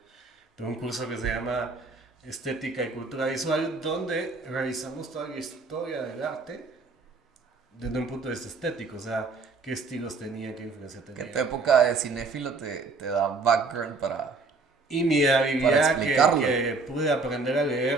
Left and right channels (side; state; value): left; quieter; 4.0 dB